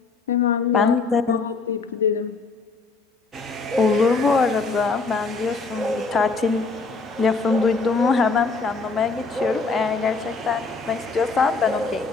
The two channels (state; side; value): quieter; right; 4.0 dB